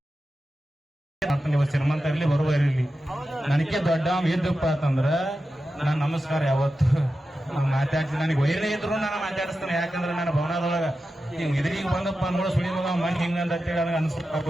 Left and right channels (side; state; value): both; normal; correlation 0.92